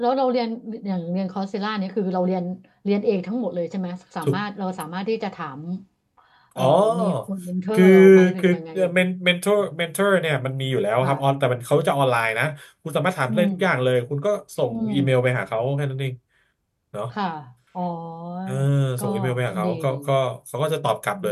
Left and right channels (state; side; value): identical; both; correlation 1.00